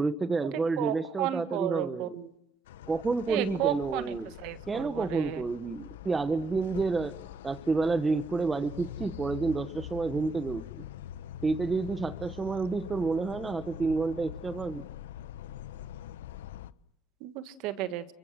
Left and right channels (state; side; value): quieter; left; 3.8 dB